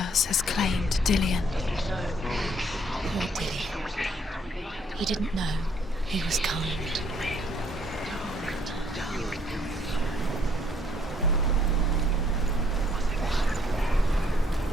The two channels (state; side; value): normal; both; correlation 0.65